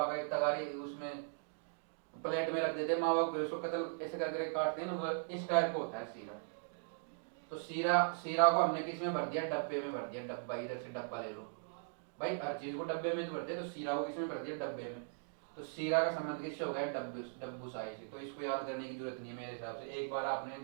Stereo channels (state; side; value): silent; left; digital silence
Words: का एक तगारी उसमें प्लेट में रख देते हैं मावा को, फिर उसको कतल ऐसे करके काटते हैं ना, वो इस टाइप का होता है सीरा। तो सीरा, सीरा को हमने किस में भर दिया, डब्बे में भर दिया। डब्बा, इधर से डब्बा ले लो भाई, हर चीज को डब्बे में तो भरते हैं, तो सीरा को किस में भर दिया, डब्बे में। तो सीरा का संबंध किससे हो गया, डब्बू साई से। तो इसको याद करने की जरूरत नहीं है मेरे हिसाब से, एक बार आपने